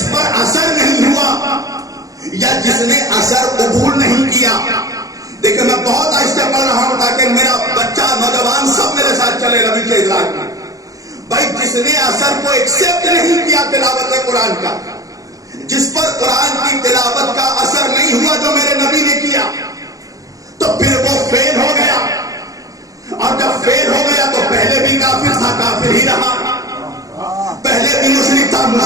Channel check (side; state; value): left; late; 0.17 ms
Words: پر اثر نہیں ہوا یا جس نے اثر قبول نہیں کیا، دیکھیں میں بہت آہستہ پڑھ رہا ہوں تاکہ میرا بچہ نوجوان سب میرے ساتھ چلے ربی کے ادراک میں. بھائی جس نے اثر کو ایکسپٹ نہیں کیا تلاوت قرآن کا، جس پر قرآن کی تلاوت کا اثر نہیں ہوا جو میرے نبی نے کیا، تو پھر وہ فیل ہو گیا. اور جب فیل ہو گیا تو پہلے بھی کافر تھا، کافر ہی رہا. پہلے بھی مشرک تھا،